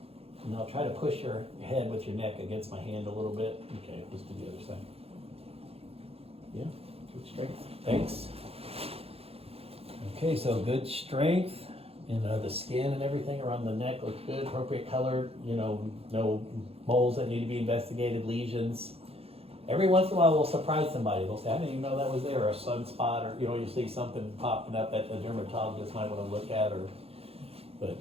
And I'll try to push your head with your neck against my hand a little bit. Okay, let's do the other side. Yeah, good strength. Thanks. Okay, so good strength. The skin and everything around the neck looks good. Appropriate color. No moles that need to be investigated, lesions. Every once in a while we'll surprise somebody. They'll say, I didn't even know that was there, or a sunspot, or you see something popping up that the dermatologist might want to look at, but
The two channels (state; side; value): late; left; 0.29 ms